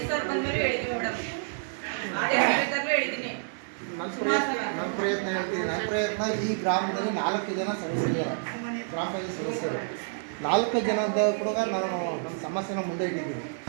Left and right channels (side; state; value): left; silent; digital silence